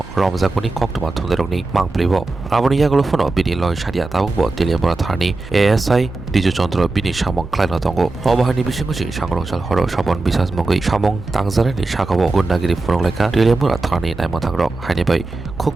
रमजागुनि कक्तमा थुंदेरकनि मांप्लेबो आबनि यागलो फनो बिनि लय सारिया ताबुकबो तेलियामुरा थारनि एएसआई डिजु चन्द्र बिनि सामं क्लाइनो दंगो अबाहानि बिसिंगसि सांग्रंसाल हर सबन बिसास मंगै सामं तांजानायनि साखाव गुन्डागिरि फुनंलाइखा तेलियामुरा थारनि नायमथांग्रक हायनिबाय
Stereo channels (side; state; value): left; quieter; 3.2 dB